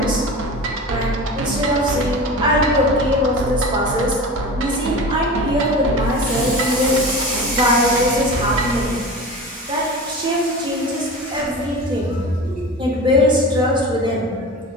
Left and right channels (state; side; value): normal; both; correlation 0.32